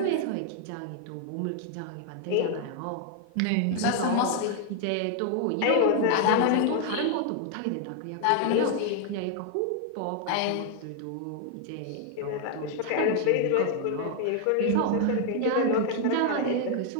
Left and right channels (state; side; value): different; both; correlation 0.00